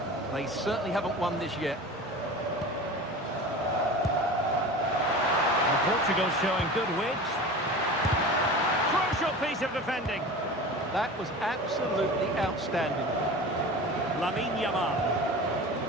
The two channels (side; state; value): both; normal; correlation 0.34